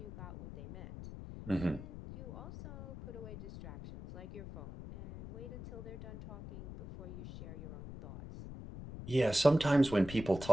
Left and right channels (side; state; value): left; noise; rumble, 10 dB below the sound